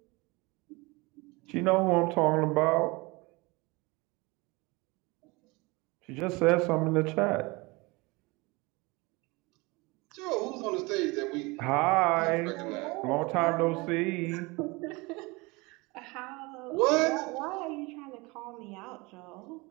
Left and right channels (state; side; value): quieter; left; 25.1 dB